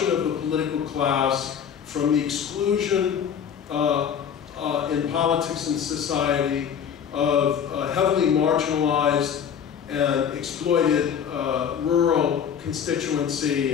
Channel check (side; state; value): right; quieter; 8.0 dB